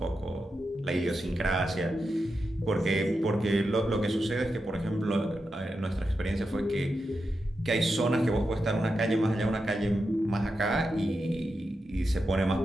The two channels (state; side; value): normal; both; correlation 0.88